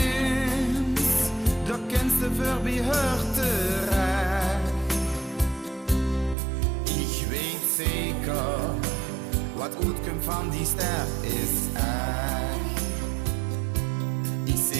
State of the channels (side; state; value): left; drops out; at 6.4 s